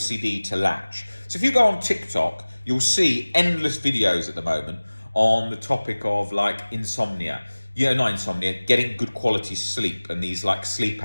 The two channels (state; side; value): inverted; both; correlation -1.00